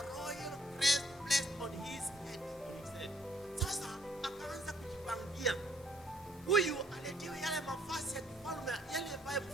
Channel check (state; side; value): normal; both; correlation 0.64